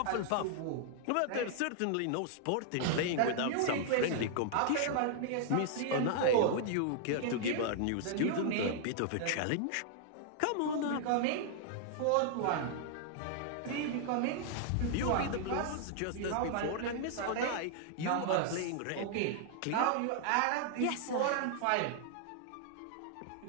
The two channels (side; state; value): both; different; correlation -0.01